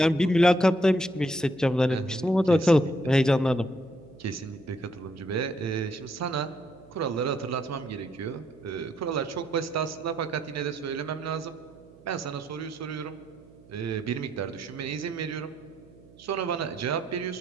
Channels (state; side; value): noise; right; hum, 24 dB below the sound